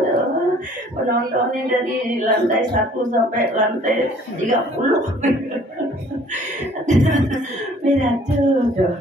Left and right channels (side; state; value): both; normal; correlation 0.55